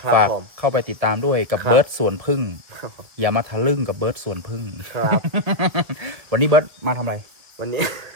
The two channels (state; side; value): late; left; 1.9 ms